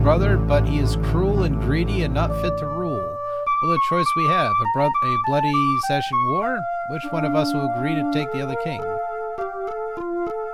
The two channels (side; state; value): both; identical; correlation 1.00